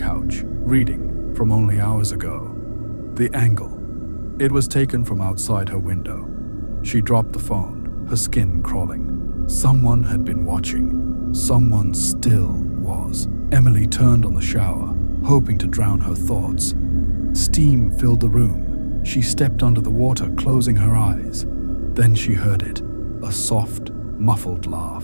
reading from only hours ago. The angle. It was taken from outside her window. She dropped the phone, her skin crawling. Someone had been watching. Someone still was. Emily turned on the shower, hoping to drown her thoughts. Steam filled the room. She stepped under the water, closing her eyes. Then she heard it, a soft, muffled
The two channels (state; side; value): inverted; both; correlation -1.00